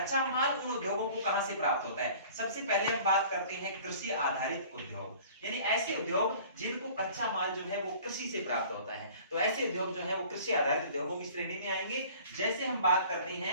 माल उन उद्योगों को कहां से प्राप्त होता है? सबसे पहले हम बात करते हैं कृषि आधारित उद्योग, यानी ऐसे उद्योग जिनको कच्चा माल जो है वो कृषि से प्राप्त होता है। तो ऐसे उद्योग जो है वो कृषि आधारित उद्योगों की श्रेणी में आएंगे। जैसे हम बात करते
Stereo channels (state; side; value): inverted; both; correlation -0.48